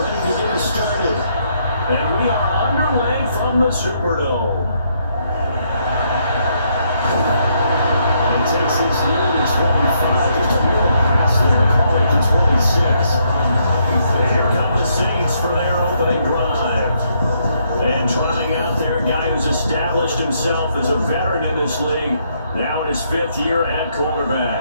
to get us started. And we are underway from the Superdome. And takes this near to 25, just a little pass there, call it to 26. And here come the Saints for their opening drive. And trotting out there, a guy who's established himself as a veteran in this league, now in his 5th year at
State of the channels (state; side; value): inverted; both; correlation -0.73